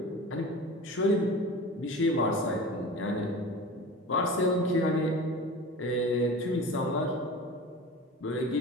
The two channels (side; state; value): both; normal; correlation 0.35